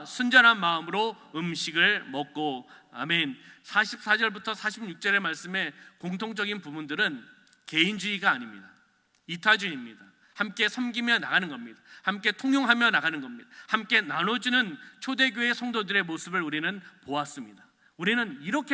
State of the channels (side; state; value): both; identical; correlation 1.00